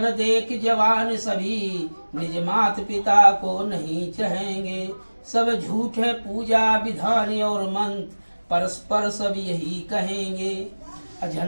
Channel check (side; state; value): both; inverted; correlation -1.00